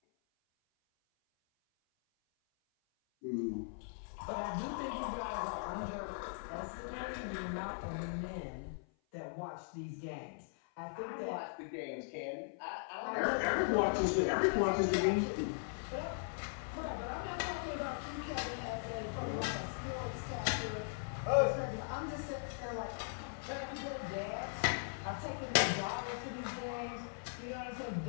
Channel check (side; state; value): right; silent; 52 dB below the other